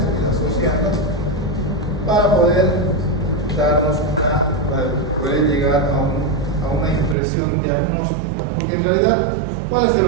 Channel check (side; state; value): left; drops out; at 7.2 s